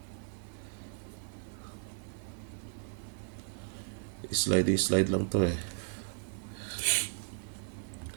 Slide lang to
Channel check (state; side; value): silent; left; 54 dB below the other